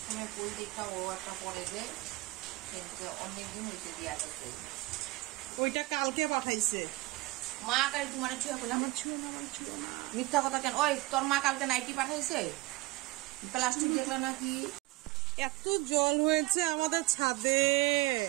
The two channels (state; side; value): quieter; left; 20.4 dB